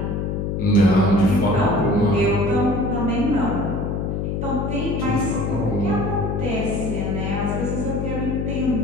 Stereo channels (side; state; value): left; noise; hum, 2 dB below the sound